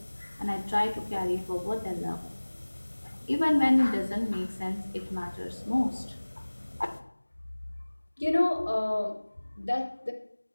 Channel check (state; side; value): inverted; both; correlation -1.00